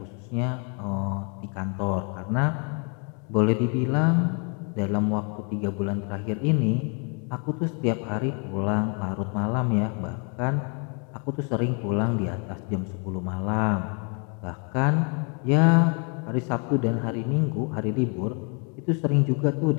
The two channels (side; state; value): right; quieter; 37.1 dB